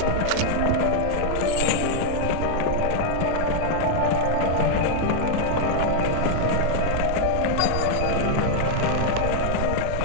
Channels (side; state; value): both; different; correlation 0.00